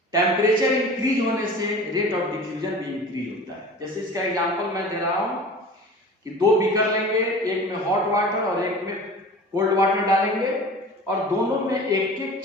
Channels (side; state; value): both; normal; correlation 0.39